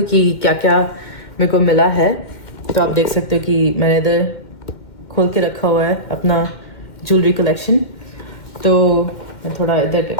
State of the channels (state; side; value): late; right; 2.1 ms